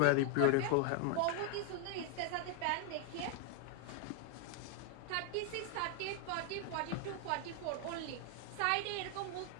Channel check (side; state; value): both; different; correlation 0.01